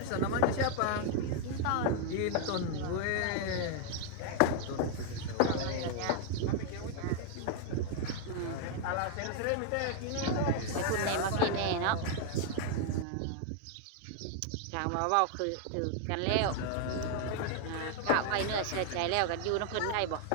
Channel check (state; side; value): different; both; correlation 0.00